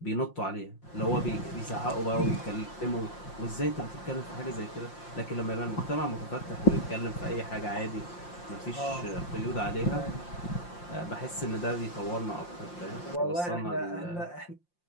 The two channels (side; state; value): right; late; 5.7 ms